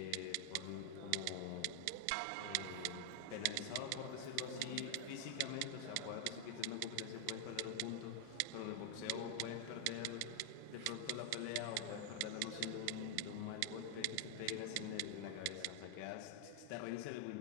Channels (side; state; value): both; different; correlation 0.00